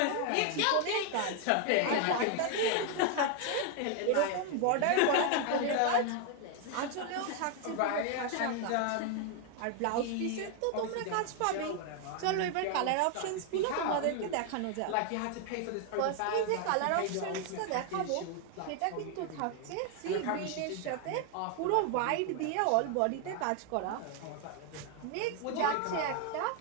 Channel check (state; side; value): different; both; correlation 0.01